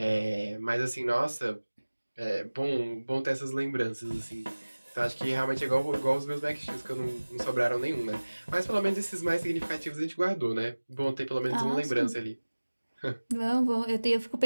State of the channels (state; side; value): inverted; both; correlation -1.00